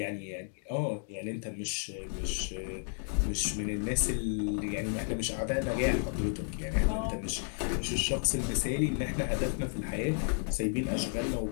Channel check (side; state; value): right; silent; 56 dB below the other